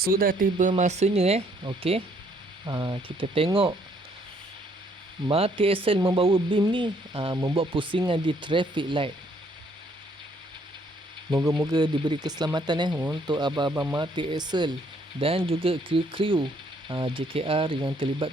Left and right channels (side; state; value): both; normal; correlation 0.66